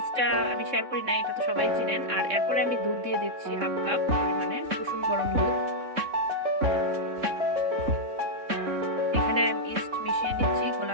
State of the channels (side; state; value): left; late; 3.6 ms